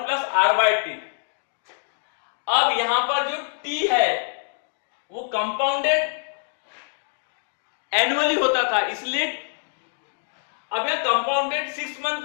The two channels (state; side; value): silent; right; digital silence